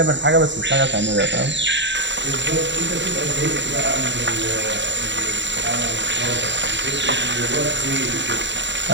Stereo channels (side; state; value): left; late; 0.53 ms